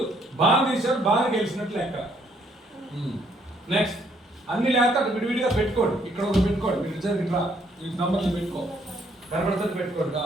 బాగా తీసాడు, బాగా గెలిచినట్లు లెక్క. నెక్స్ట్ అన్ని లేక విడివిడిగా పెట్టుకోండి. ఇక్కడ ఒక పెట్టుకోండి, మీరు ఇద్దరు ఇట్లా ఈ నంబర్లు పెట్టుకో, కనబడుతుంది పెట్టుకోండి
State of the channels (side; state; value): both; normal; correlation 0.68